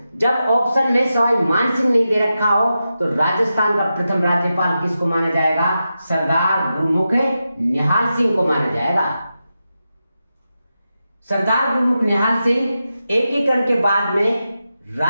जब ऑप्शन में सवाई मान सिंह नहीं दे रखा हो तो राजस्थान का प्रथम राज्यपाल किसको माना जाएगा? सरदार गुरुमुख निहाल सिंह को माना जाएगा। सरदार गुरुमुख निहाल सिंह एकीकरण के बाद में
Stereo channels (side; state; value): both; inverted; correlation -0.90